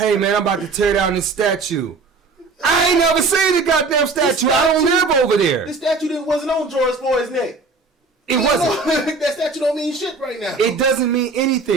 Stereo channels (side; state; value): left; quieter; 4.0 dB